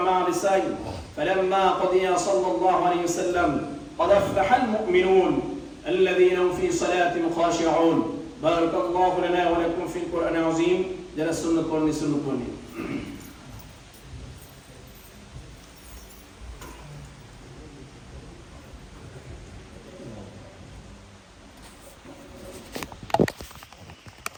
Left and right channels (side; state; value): both; identical; correlation 1.00